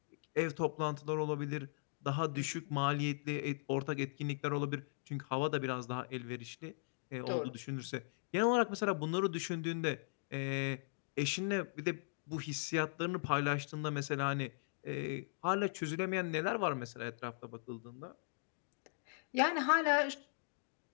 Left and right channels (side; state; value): right; silent; digital silence